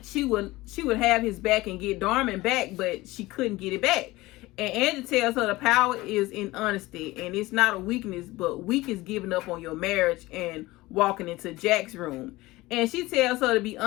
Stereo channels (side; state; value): right; quieter; 19.6 dB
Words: she would have his back and get Darman back, but she couldn't get it back. And Angie tells her the power is in honesty, and it's not a weakness, but weak is giving up on your marriage and walking into Jack's room. And she tells her to be